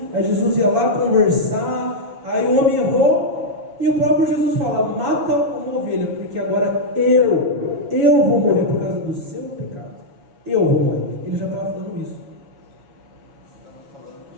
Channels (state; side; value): late; left; 7.1 ms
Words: aí Jesus ia lá conversar, Aí o homem errou e o próprio Jesus fala: mata uma ovelha, porque agora eu vou morrer por causa do seu pecado. Eu vou morrer. Ele já estava falando isso. Estava falando